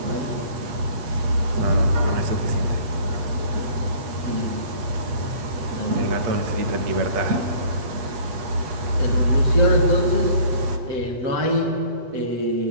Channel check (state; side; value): late; left; 8.3 ms